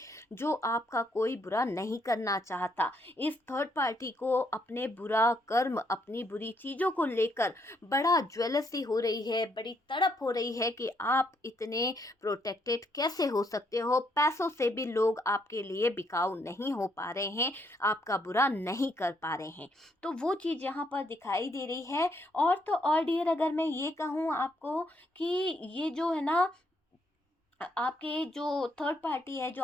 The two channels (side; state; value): both; normal; correlation 0.73